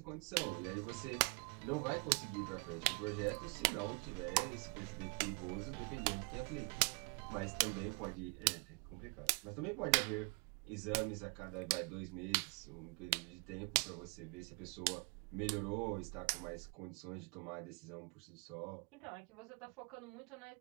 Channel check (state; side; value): quieter; left; 34.5 dB